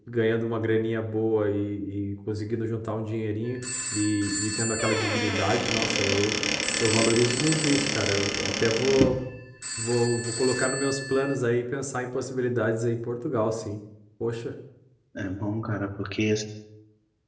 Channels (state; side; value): identical; both; correlation 1.00